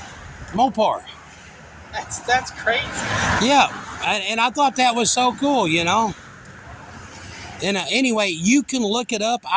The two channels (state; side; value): identical; both; correlation 1.00